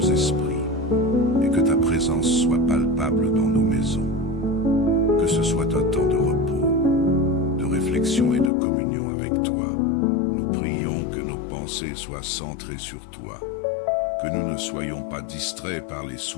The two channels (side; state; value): right; drops out; at 8.5 s